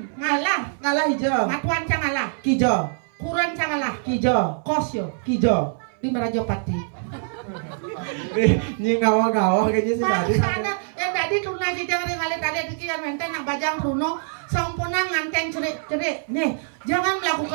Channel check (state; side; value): silent; left; 61 dB below the other